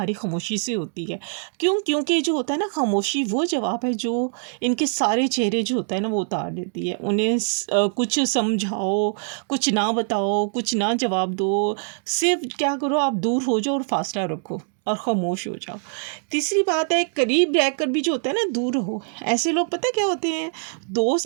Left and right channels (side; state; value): left; silent; 56 dB below the other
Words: खामोशी से होती है। क्यों? क्योंकि जो होता है ना, खामोशी वो जवाब है जो इनके सारे चेहरे जो होता है ना वो उतार देती है। उन्हें कुछ समझाओ, कुछ ना बताओ, कुछ ना जवाब दो, सिर्फ क्या करो, आप दूर हो जाओ और फासला रखो और ख़ामोश हो जाओ। तीसरी बात है, करीब रहकर भी जो होता है ना दूर रहो। ऐसे लोग पता क्या होते हैं, दोस्त